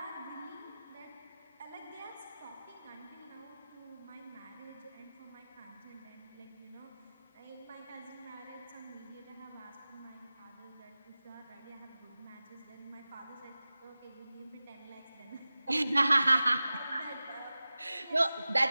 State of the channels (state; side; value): inverted; both; correlation -0.96